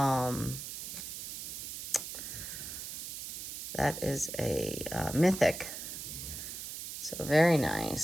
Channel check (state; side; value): noise; right; hiss, 7 dB below the sound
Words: that is a mythic. So very